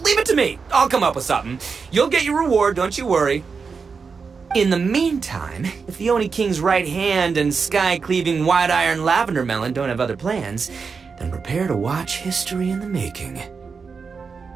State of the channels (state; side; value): quieter; left; 5.3 dB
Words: leave it to me. I'll come up with something. You'll get your reward, don't you worry. In the meantime, if the Oni King's right hand and sky-cleaving white iron lavender melon don't have other plans, then prepare to watch history in the making.